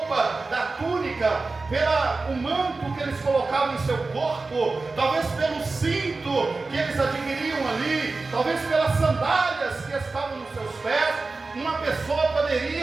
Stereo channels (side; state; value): left; quieter; 3.7 dB